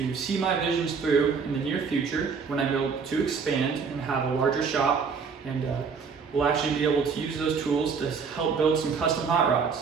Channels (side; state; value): left; quieter; 5.6 dB